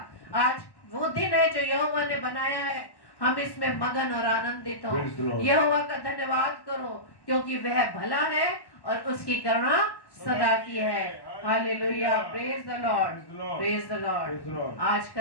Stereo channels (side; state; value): right; late; 1.1 ms